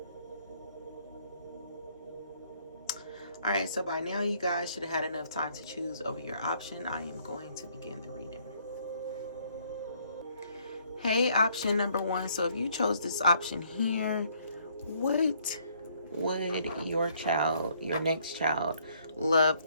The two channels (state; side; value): inverted; both; correlation -0.66